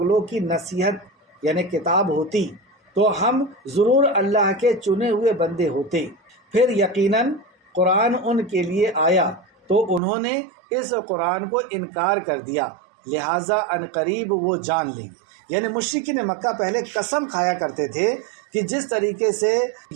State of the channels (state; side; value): drops out; left; at 10.0 s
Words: کی نصیحت یعنی کتاب ہوتی تو ہم ضرور اللہ کے چنے ہوئے بندے ہوتے، پھر یقیناً قرآن ان کے لیے آیا تو انہوں نے اس قرآن کو انکار کر دیا، لہٰذا عنقریب وہ جان لیں گے۔ یعنی مشرکین مکہ پہلے قسم کھایا کرتے تھے کہ جس طریقے سے